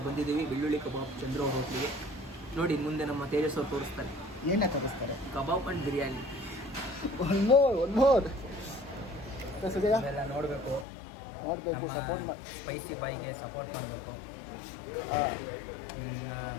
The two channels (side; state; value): right; drops out; at 10.9 s